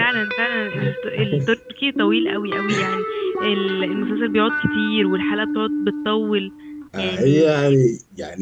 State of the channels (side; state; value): both; identical; correlation 1.00